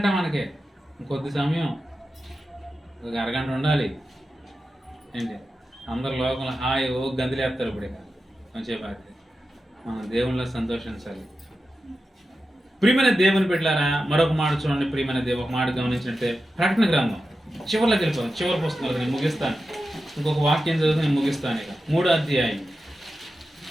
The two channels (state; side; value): normal; both; correlation 0.91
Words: మనకి కొద్ది సమయం, ఒక అరగంట ఉండాలి ఏంటి. అందరు లోకంలో హాయ్ ఓ గంతులేస్తారు. ఇప్పుడు కొంచెం మనం దేవునిలో సంతోషించాలి. ప్రియమైన దేవుని బిడ్డలారా, మరొక మాట చూడండి. ప్రియమైన ఒక మాట గమనించినట్టే ప్రకటన గ్రంథం చివరిలోకి వెళ్ళిపోతాం. చివరి పుస్తకాలు నేను ముగిస్తాను, ఇంకొక వాక్యం చదివితే నేను ముగిస్తాను. ఇక 3వ అధ్యాయం